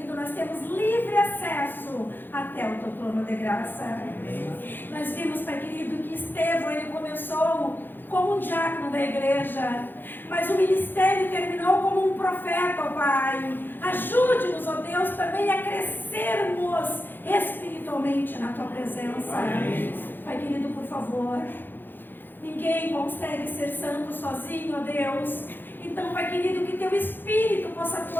nós temos livre acesso até o Teu trono de graça. Nós vimos, Pai querido, que Estevão, ele começou como um diácono da igreja, mas o ministério terminou como um profeta, ó Pai. Ajude-nos, ó Deus, também a crescermos espiritualmente na Tua presença. Pai querido, por favor, ninguém consegue ser santo sozinho, ó Deus. Então, Pai querido, que Teu Espírito possa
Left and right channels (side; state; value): right; late; 0.095 ms